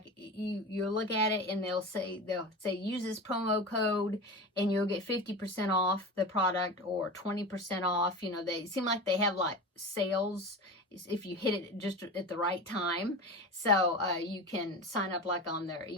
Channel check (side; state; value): both; normal; correlation 0.29